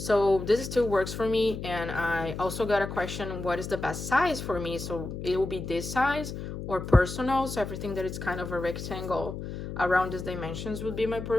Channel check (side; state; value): left; noise; hum, 7 dB below the sound